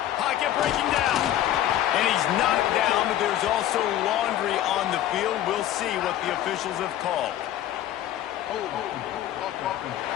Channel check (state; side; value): quieter; right; 12.3 dB